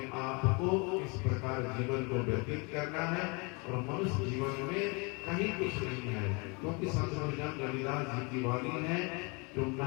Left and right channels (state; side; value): quieter; right; 30.7 dB